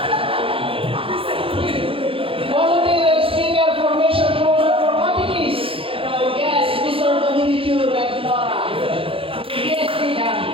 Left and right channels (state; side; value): late; left; 0.26 ms